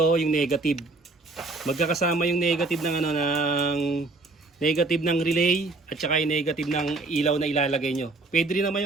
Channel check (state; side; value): quieter; left; 3.4 dB